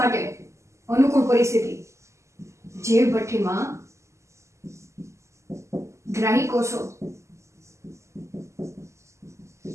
માટે. અનુકૂળ પરિસ્થિતિ જૈવ ભઠ્ઠીમાં ગ્રાહી કોષો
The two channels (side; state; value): left; late; 0.14 ms